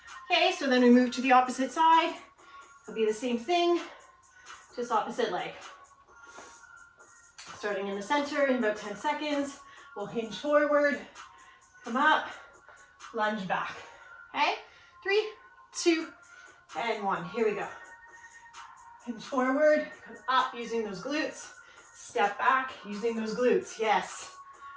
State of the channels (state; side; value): identical; both; correlation 1.00